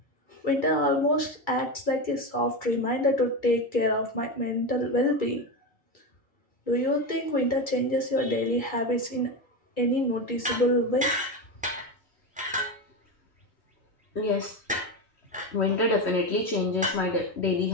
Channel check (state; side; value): normal; both; correlation 0.17